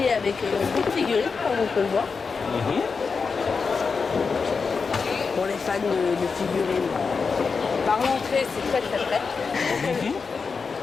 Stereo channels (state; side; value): quieter; right; 5.0 dB